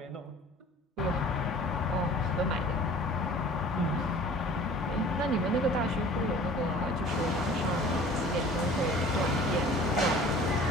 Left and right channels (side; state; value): both; normal; correlation 0.47